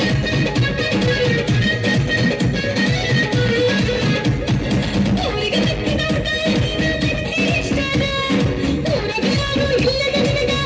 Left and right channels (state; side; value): identical; both; correlation 1.00